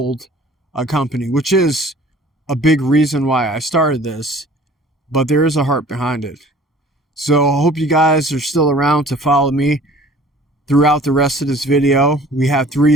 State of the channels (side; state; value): both; normal; correlation 0.50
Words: a company, which is a big reason why I started this, but there is a heart behind it. So I hope you guys are still around to follow me throughout the rest of this video. We have